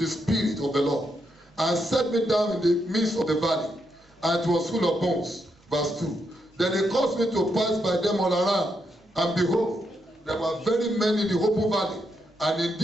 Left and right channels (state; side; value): normal; both; correlation 0.80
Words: spirit of the Lord and set me down in the midst of the valley, and it was full of bones. Verse 2. Then he caused me to pass by them all around, and behold, there were very many in the open valley, and